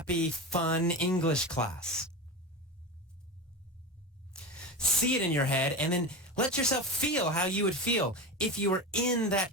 fun English class. See it in your head and then let yourself feel how you would feel if you were in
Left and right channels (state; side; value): normal; both; correlation 0.24